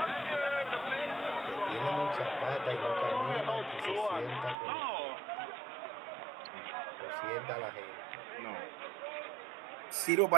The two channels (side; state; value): left; drops out; at 4.5 s